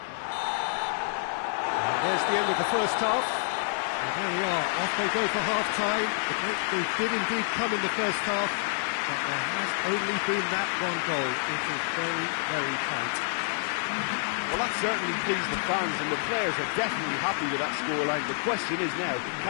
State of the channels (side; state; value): right; silent; digital silence